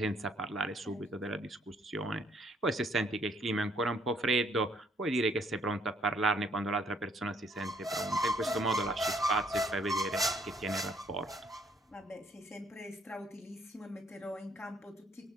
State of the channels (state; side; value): normal; both; correlation 0.65